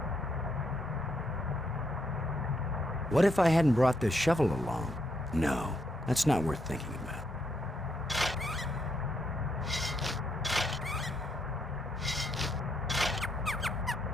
What if I hadn't brought this shovel along? No, that's not worth thinking about.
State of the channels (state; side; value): normal; both; correlation 0.77